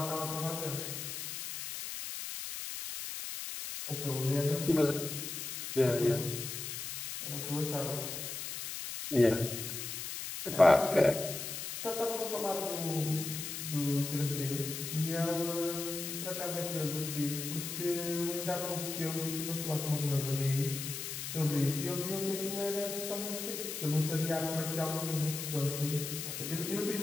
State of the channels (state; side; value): noise; left; hiss, 6 dB below the sound